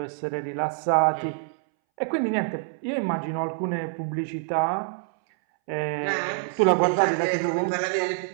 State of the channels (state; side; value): silent; left; 61 dB below the other